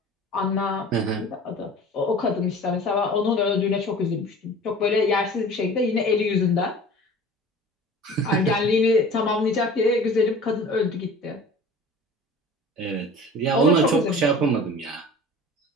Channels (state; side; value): normal; both; correlation 0.42